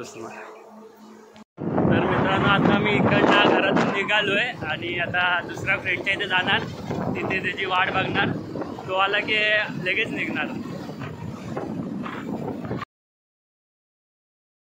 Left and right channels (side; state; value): both; identical; correlation 1.00